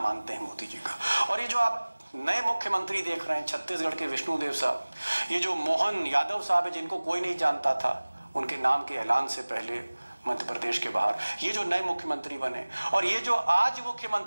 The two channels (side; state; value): both; inverted; correlation -1.00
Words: हैं मोदी जी का। और ये जो आप नए मुख्यमंत्री देख रहे हैं, छत्तीसगढ़ के विष्णुदेव साहब, ये जो मोहन यादव साहब है जिनको कोई नहीं जानता था, उनके नाम के ऐलान से पहले मध्य प्रदेश के बाहर, ये जो नए मुख्यमंत्री बने, और ये जो आज